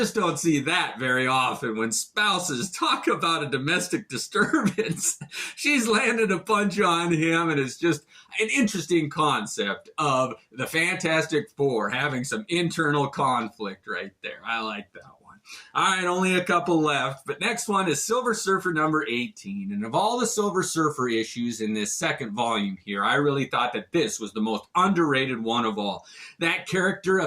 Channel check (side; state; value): both; identical; correlation 1.00